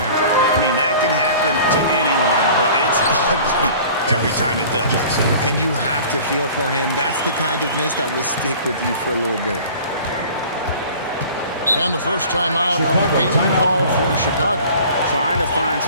I mean, that can happen to anyone, but it's ugly every time it does. And you have to feel for him. That's the kind of miss that will stick with you for a little bit. And the first time out of the game called for Chicago. Trying to find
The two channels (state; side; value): inverted; both; correlation -0.45